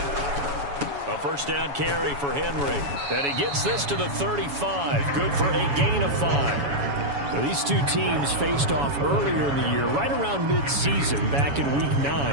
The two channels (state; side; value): late; left; 7.1 ms